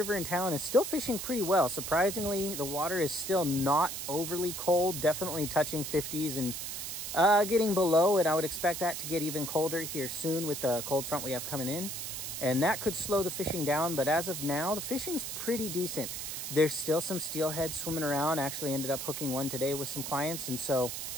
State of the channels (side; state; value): right; noise; hiss, 5 dB below the sound